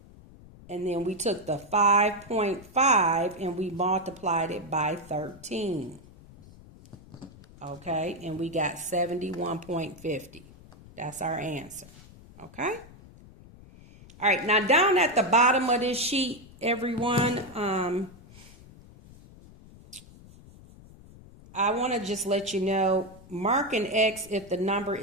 And then we took the 5.5 and we multiplied it by 13. Okay, and we got 71.50. That's our answer. Okay. All right, now down at the bottom of this sheet, everyone, I want to just let you know, mark an X if the number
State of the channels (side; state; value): left; noise; rumble, 21 dB below the sound